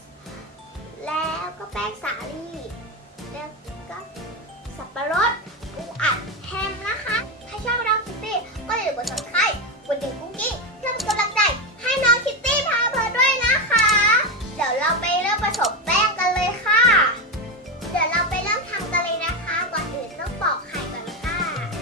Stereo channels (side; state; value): both; normal; correlation 0.13